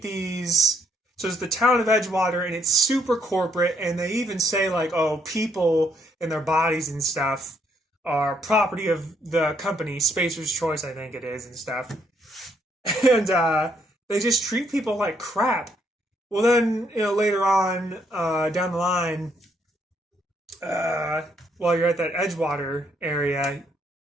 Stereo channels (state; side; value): normal; both; correlation 0.71